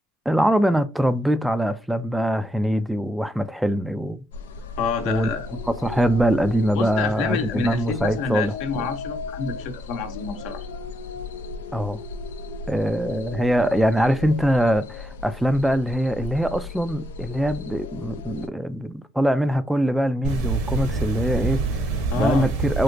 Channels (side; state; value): both; normal; correlation 0.79